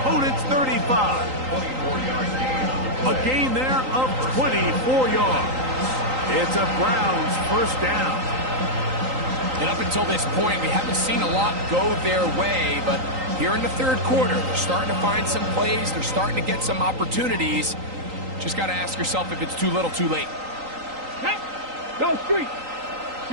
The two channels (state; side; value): late; left; 3.8 ms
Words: 35. 24-yard gain. A gain there of 24 yards. It's a Browns 1st down. And up until this point, we haven't seen a lot go their way, but here in the third quarter. They're starting to find some plays. They're starting to get some opportunities. Just got to ask yourself if it's too little, too late. Hey, go street.